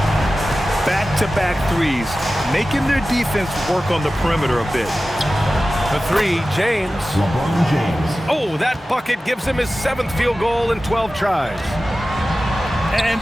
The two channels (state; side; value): normal; both; correlation 0.95